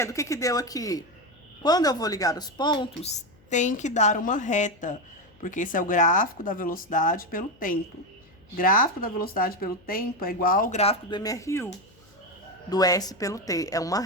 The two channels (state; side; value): noise; left; hum, 29 dB below the sound